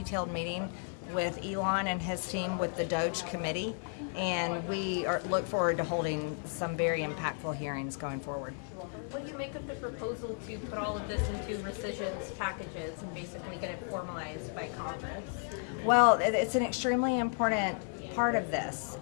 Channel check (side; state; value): right; silent; 55 dB below the other